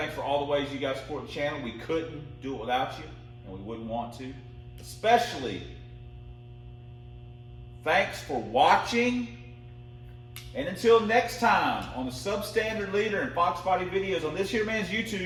for all the ways you guys support the channel. We couldn't do it without you, and we wouldn't want to. Especially, thanks for watching. And until next time on the Substandard Leader and Fox Body videos on this here man's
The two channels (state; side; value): identical; both; correlation 1.00